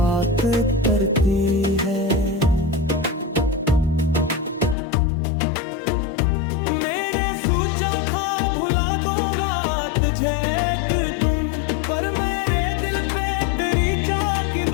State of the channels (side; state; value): right; drops out; at 4.8 s